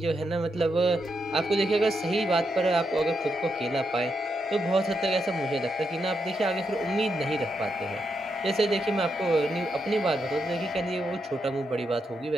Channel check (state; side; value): normal; both; correlation 0.82